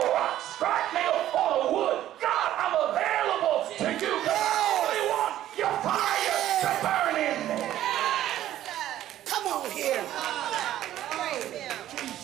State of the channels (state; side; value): quieter; left; 12.8 dB